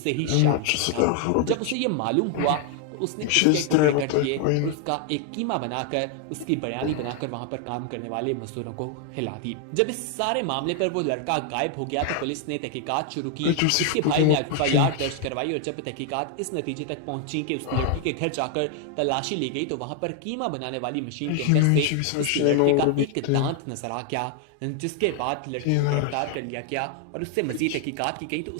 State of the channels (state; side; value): different; both; correlation 0.00